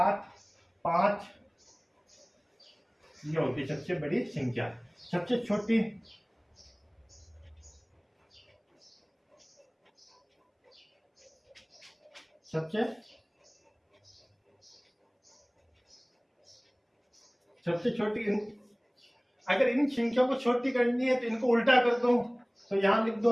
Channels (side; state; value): both; identical; correlation 1.00